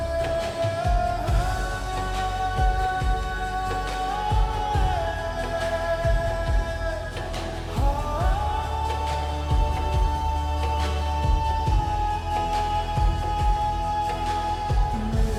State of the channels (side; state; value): both; identical; correlation 1.00